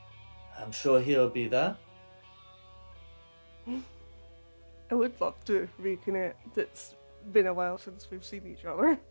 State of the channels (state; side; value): inverted; both; correlation -1.00